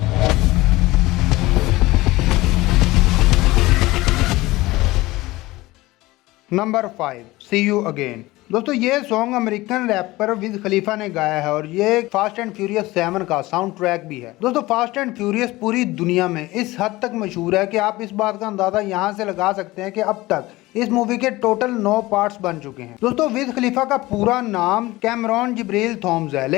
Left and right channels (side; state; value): right; quieter; 19.4 dB